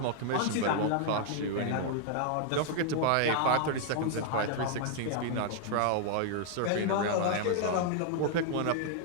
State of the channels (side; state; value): both; different; correlation 0.00